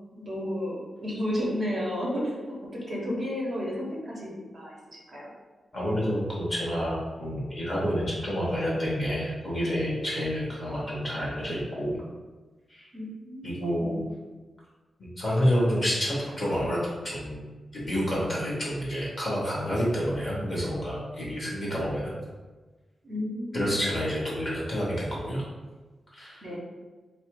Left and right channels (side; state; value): both; normal; correlation 0.89